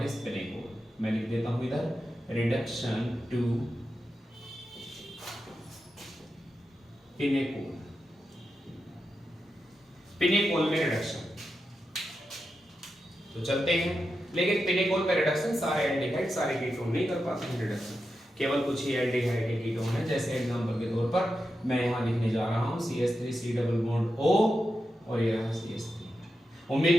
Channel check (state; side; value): normal; both; correlation 0.89